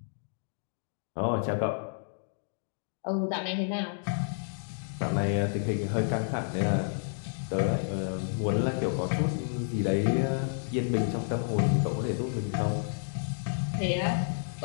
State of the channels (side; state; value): right; silent; digital silence